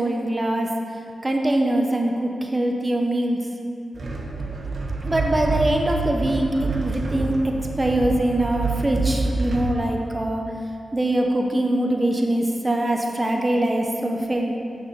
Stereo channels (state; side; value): normal; both; correlation 0.92